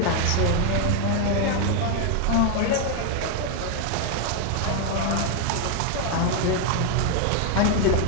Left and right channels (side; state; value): both; different; correlation 0.00